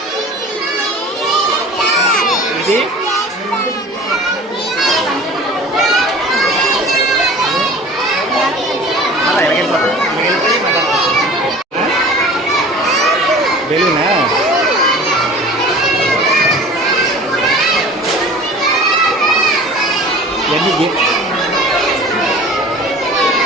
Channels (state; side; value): normal; both; correlation 0.42